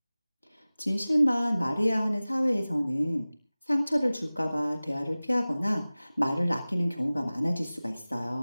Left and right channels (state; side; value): inverted; both; correlation -0.98